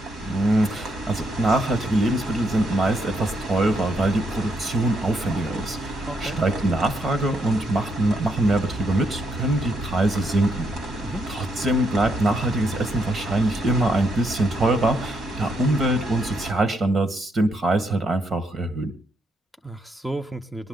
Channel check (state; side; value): normal; both; correlation 0.77